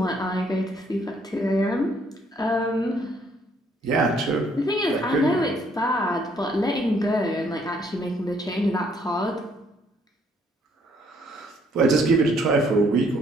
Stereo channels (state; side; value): normal; both; correlation 0.66